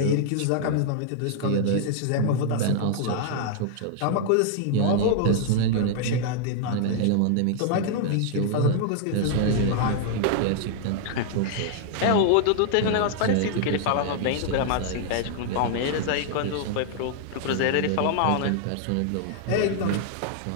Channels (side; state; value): both; different; correlation -0.01